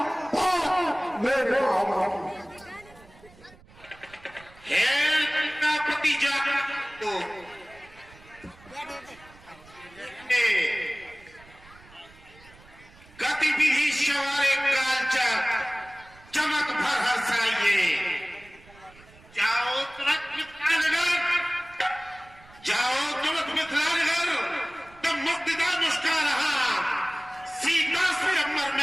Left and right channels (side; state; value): right; noise; rumble, 24 dB below the sound